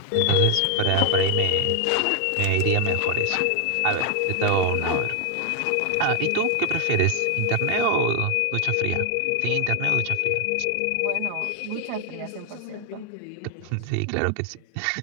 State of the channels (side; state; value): both; different; correlation 0.00